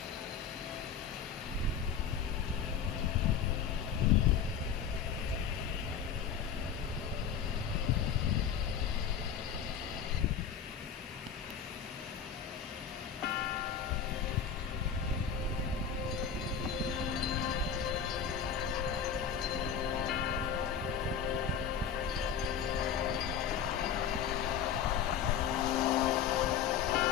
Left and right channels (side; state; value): right; quieter; 7.5 dB